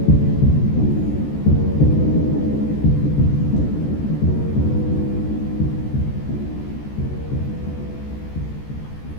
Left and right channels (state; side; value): late; right; 14 ms